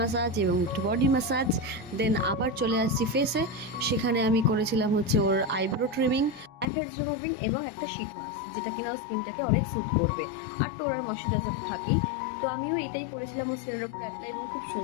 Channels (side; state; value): right; drops out; at 6.7 s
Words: এবং একটু বডি ম্যাসাজ। দেন আবার চলে আসছি ফেসে, সেখানে আমি করেছিলাম হচ্ছে ওর eyebrow trimming, blackheads removing এবং একটা শীট মাস্ক, যেটা কিনা ওর স্কিনটাকে অনেক স্যুথ করবে। আর টোনার ময়শ্চারাইজার তো থাকেই। তো আমিও এটাই করেছিলাম ওর স্কিনের ওপর অ্যাপ্লাই, এবং খুব